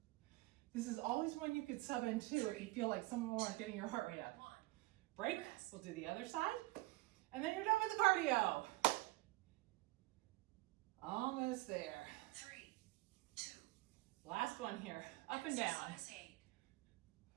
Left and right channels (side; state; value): left; quieter; 20.1 dB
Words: This is always one you could sub into if you feel like some of them aren't getting your heart rate up. 1. Break. Rest. We'll do the other side. And then you're done with the cardio. Almost there. 3, 2. Last one here. Up and down. Exercise 8.